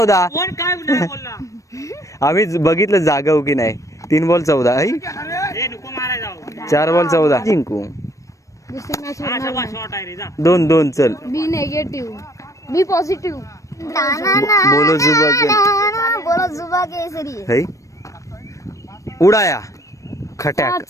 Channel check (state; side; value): late; right; 0.15 ms